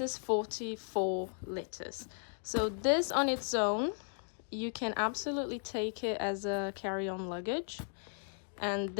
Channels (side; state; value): right; silent; 54 dB below the other